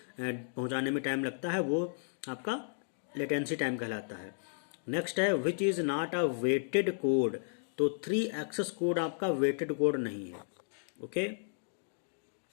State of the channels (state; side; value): silent; right; digital silence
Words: पहुंचाने में टाइम लगता है वो आपका लेटेंसी टाइम कहलाता है। नेक्स्ट है which is not a weighted code. तो 3 एक्सेस कोड आपका वेटेड कोड नहीं है। Okay,